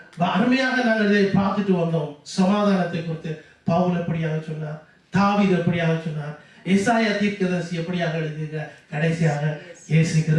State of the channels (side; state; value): both; identical; correlation 1.00